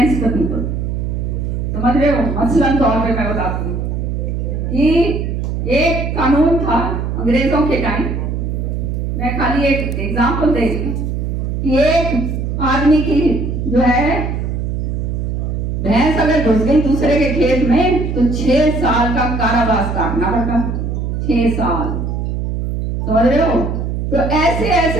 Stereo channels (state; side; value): noise; right; hum, 2 dB below the sound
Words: the people. समझ रहे हो? मसलन तौर पे मैं बताती हूँ कि एक कानून था अंग्रेजों के टाइम, मैं खाली एक एग्जाम्पल दे रही कि एक आदमी की जो है भैंस अगर घुस गई दूसरे के खेत में तो 6 साल का कारावास काटना पड़ता। 6 साल, समझ रहे हो? तो ऐसे